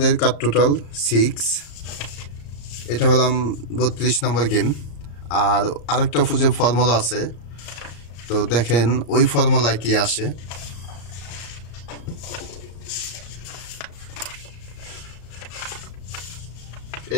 কাট টোটাল 6। এটা হলাম 32 নম্বর গেম। আর আরেকটা যে ফর্মুলা আছে, তো তো দেখেন ওই ফর্মুলা কি আসে।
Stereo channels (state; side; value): late; right; 34 ms